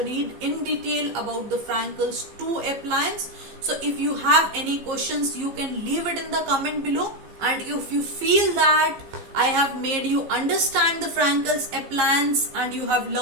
in detail about the Frankel's 2 appliance. So if you have any questions, you can leave it in the comment below. And if you feel that I have made you understand the Frankel's appliance and you have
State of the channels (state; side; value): late; left; 15 ms